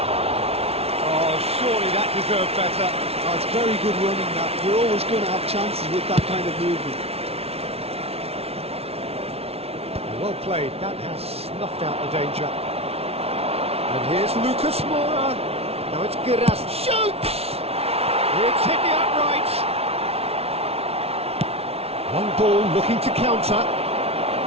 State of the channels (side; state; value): left; late; 0.30 ms